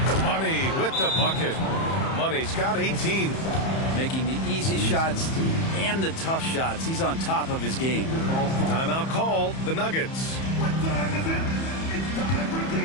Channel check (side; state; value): right; late; 31 ms